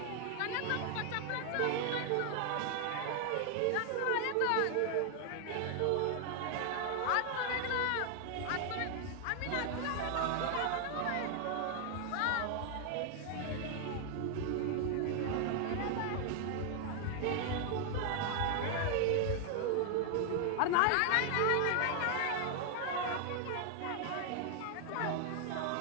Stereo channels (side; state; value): both; different; correlation 0.00